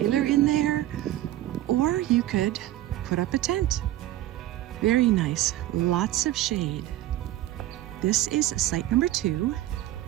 in there or you could put up a tent. Very nice, lots of shade. This is site number 2.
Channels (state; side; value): quieter; left; 14.6 dB